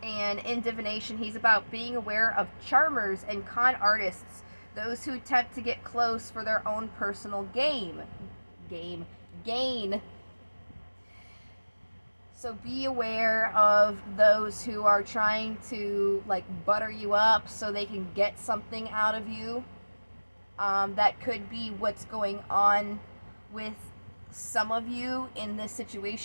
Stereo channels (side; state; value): both; inverted; correlation -1.00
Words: and in divination he's about being aware of charmers and con artists, those who attempt to get close for their own personal gain. So be aware of those who are trying to like butter you up so they can get something out of you. That could be what's going on with some of you in this